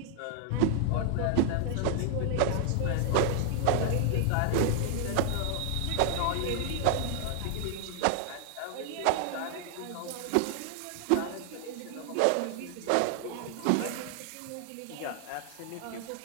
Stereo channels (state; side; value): different; both; correlation 0.00